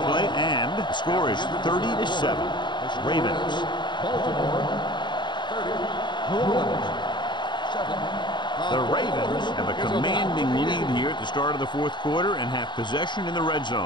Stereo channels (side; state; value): right; late; 0.22 ms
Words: play, and the score is 30-7. Ravens. Baltimore 30. New Orleans 7. The Ravens have a commanding lead here at the start of the 4th quarter and have possession in the red